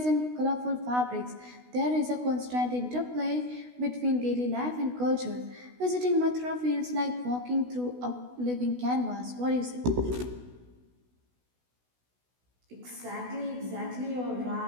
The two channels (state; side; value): late; left; 16 ms